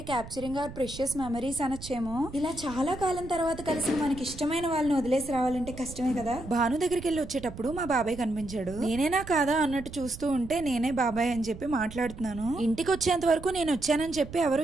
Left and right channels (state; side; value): noise; right; rumble, 13 dB below the sound